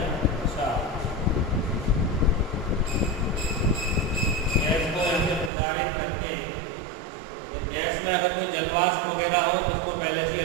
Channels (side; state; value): left; drops out; at 5.5 s